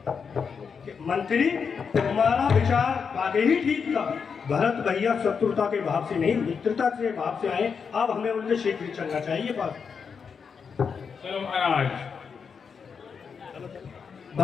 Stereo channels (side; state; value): right; quieter; 6.1 dB